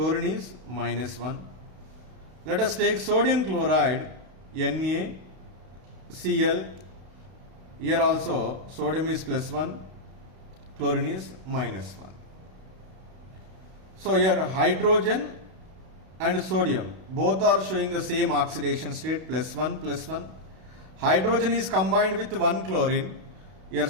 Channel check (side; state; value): left; late; 32 ms